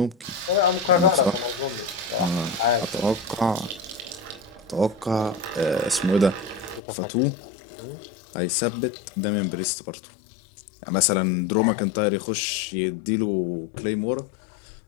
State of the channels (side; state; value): right; drops out; at 6.8 s